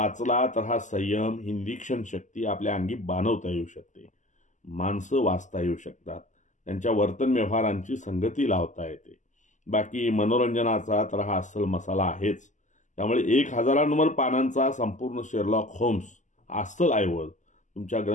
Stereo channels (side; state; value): right; late; 0.36 ms